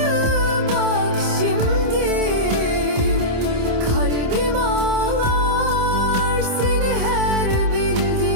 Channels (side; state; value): left; late; 27 ms